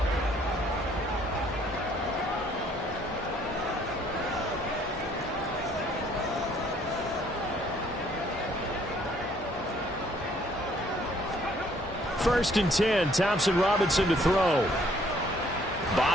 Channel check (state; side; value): normal; both; correlation 0.62